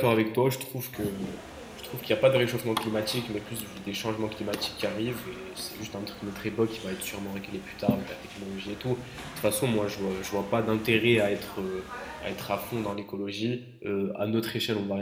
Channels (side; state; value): both; identical; correlation 1.00